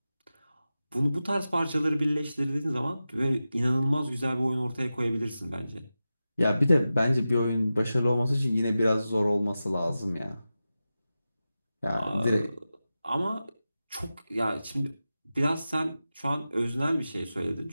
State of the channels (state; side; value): inverted; both; correlation -0.93